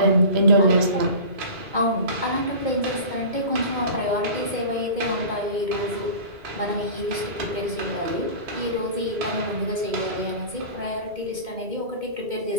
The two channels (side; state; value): left; late; 2.2 ms